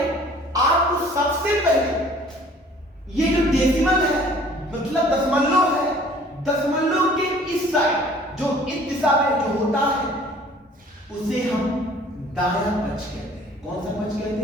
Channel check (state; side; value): normal; both; correlation 0.52